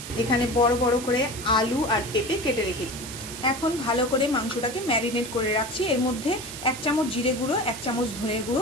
এখানে বড় বড় করে আলু আর পেঁপে কেটে রেখেছি। এখন ভালো করে মাংসটাকে ম্যারিনেট করে রাখছি। এর মধ্যে 1 চামচ জিরে গুঁড়ো, 1 চামচ ধনের গুঁড়ো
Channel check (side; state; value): right; noise; hiss, 10 dB below the sound